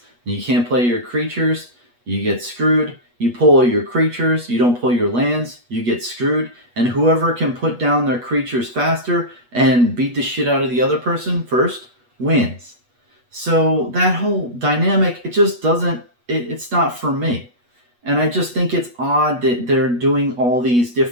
and you can't play your creatures, you get screwed. You pull your creatures, you don't pull your lands, you get screwed. And whoever can put down their creatures faster and beat the shit out of the other person first wins. So that whole dynamic, it just doesn't, it's not for me. And I just think it's odd that they're doing all these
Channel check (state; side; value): late; left; 8.3 ms